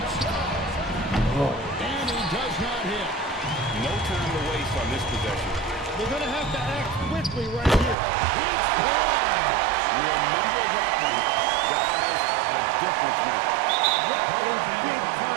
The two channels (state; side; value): drops out; left; at 8.0 s